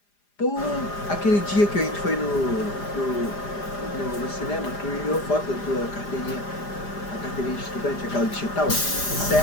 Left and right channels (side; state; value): right; late; 4.9 ms